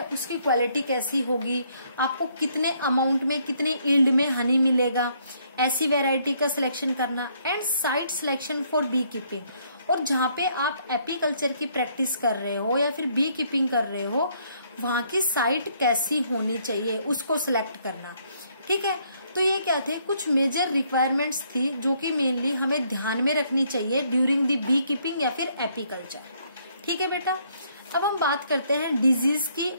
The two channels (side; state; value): both; inverted; correlation -0.68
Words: उसकी क्वालिटी कैसी होगी, आपको कितने अमाउंट में कितने यील्ड में हनी मिलेगा, ऐसी वैरायटी का सिलेक्शन करना। And site selection for beekeeping, और जहाँ पे आप एपीकल्चर की प्रैक्टिस कर रहे हो या फिर बी कीपिंग कर रहे हो, वहां की साइट कैसी होनी चाहिए उसको सिलेक्ट करना। ठीक है, तो ये क्या थे, कुछ मेजर रिक्वायरमेंट्स थी जो कि मेनली हमें ध्यान में रखनी चाहिए ड्यूरिंग द बी कीपिंग या फिर एपीकल्चर। ठीक है बेटा, अब हम बात करते हैं डिजीज की